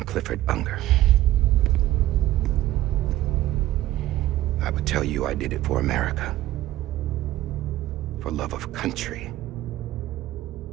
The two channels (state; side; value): quieter; left; 15.1 dB